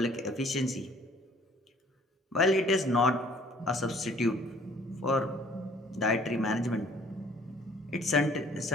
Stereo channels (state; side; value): normal; both; correlation 0.57